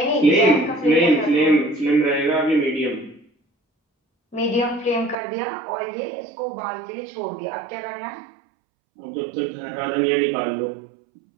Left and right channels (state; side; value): drops out; left; at 5.2 s